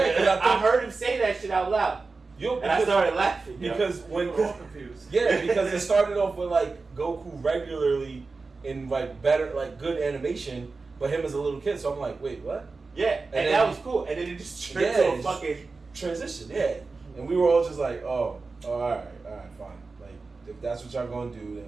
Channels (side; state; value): left; quieter; 4.0 dB